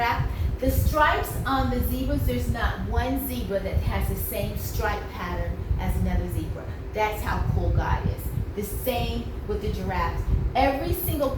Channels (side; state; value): both; identical; correlation 1.00